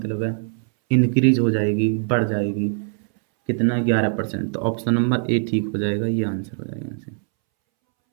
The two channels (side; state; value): left; silent; 64 dB below the other